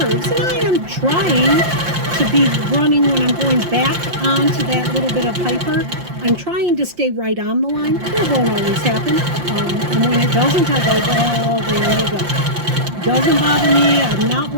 and I am trying to be running when I'm going back onto that little bit of hyper. I'm trying to stay right on the line. It won't always happen. And when it doesn't, I go, well, there you go. Doesn't bother me. I'm not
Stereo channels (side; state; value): left; late; 5.7 ms